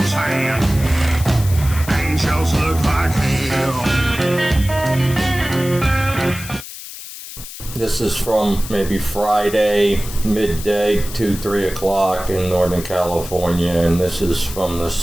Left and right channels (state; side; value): noise; left; hiss, 12 dB below the sound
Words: and angels look like hell. This is from maybe Friday, midday, 2-3 o'clock in Northern California, and this is from the